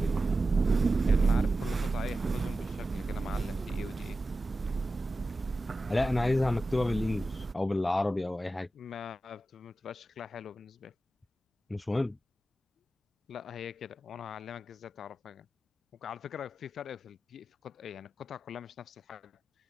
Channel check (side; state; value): both; normal; correlation 0.93